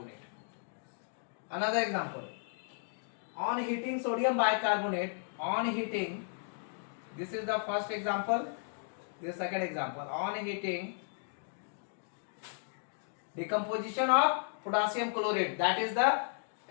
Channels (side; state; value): right; silent; digital silence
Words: Another example. On heating sodium bicarbonate, this is the first example, this second example. On heating, decomposition of potassium chlorate, that is the